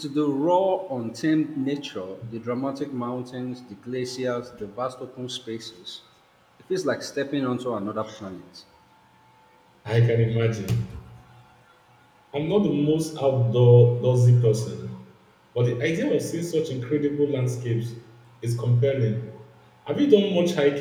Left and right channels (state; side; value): identical; both; correlation 1.00